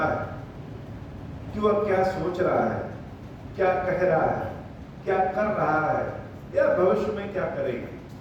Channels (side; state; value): both; identical; correlation 1.00